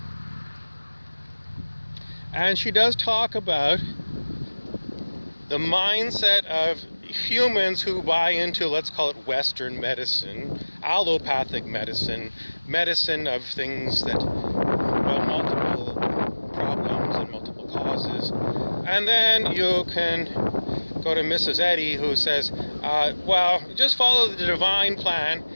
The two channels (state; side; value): inverted; both; correlation -1.00